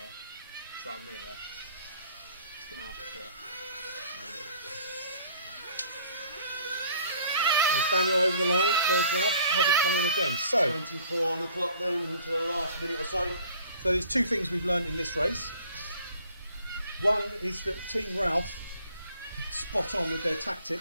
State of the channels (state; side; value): inverted; both; correlation -0.54